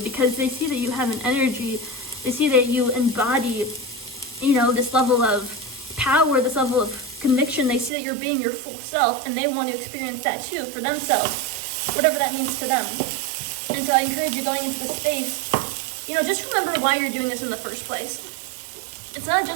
because they see that you have an energy, they see that you embody, this level of power, this level of conviction. They see that you're being your full self, and they want to experience that too for themselves, whatever that means to them. And so I encourage you, going into the space, just remember why you're doing this in the first place. It's not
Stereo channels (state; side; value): drops out; left; at 7.9 s